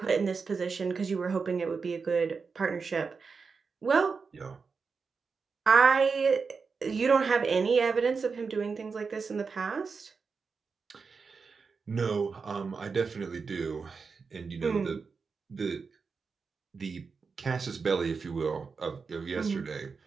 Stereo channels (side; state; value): left; quieter; 5.0 dB